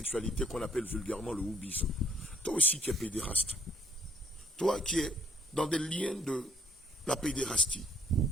qu'on appelle vulgairement le houbisme. Toi aussi qui es pédéraste, toi qui es dans des liens de la pédérastie,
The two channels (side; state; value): both; normal; correlation 0.64